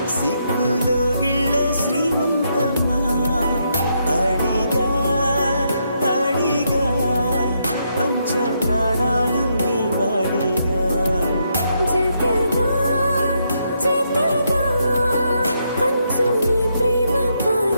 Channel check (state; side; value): inverted; both; correlation -0.78